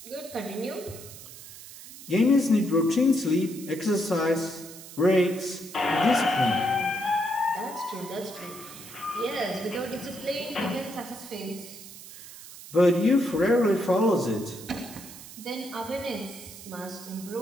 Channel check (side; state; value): right; noise; hiss, 15 dB below the sound